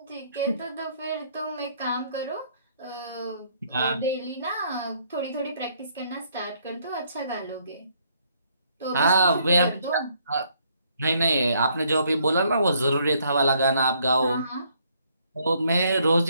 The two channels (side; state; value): both; inverted; correlation -0.68